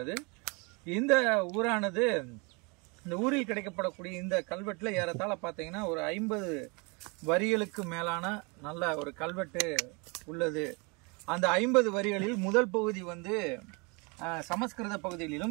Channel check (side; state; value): left; quieter; 30.3 dB